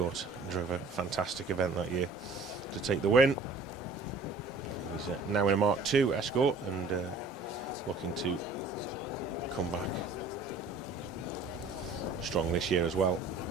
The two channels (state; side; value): quieter; left; 3.5 dB